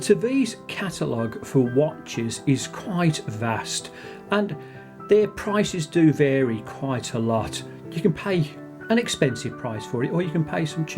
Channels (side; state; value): both; identical; correlation 1.00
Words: catalogue for watches is quite vast and their prices do vary quite a lot. You can pay an expensive price for it or you can pay some